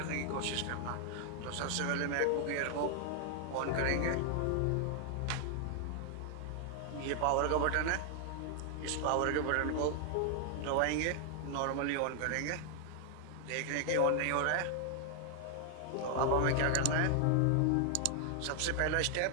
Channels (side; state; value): both; different; correlation 0.00